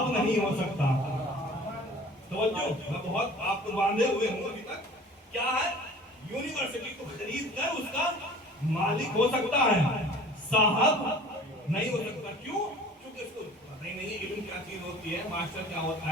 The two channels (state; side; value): normal; both; correlation 0.46